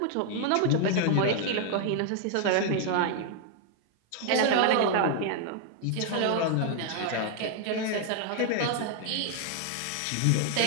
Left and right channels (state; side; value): different; both; correlation 0.00